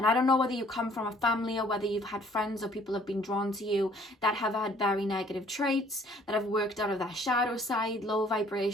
I don't know whether you come from a family or whether you've had friends or people have been drawn to you that have had very negative traits, that have worked out of that shadow side, low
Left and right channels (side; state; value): both; normal; correlation 0.59